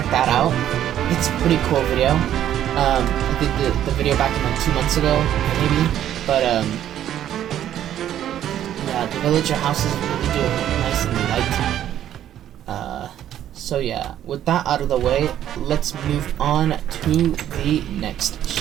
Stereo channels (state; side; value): quieter; left; 11.2 dB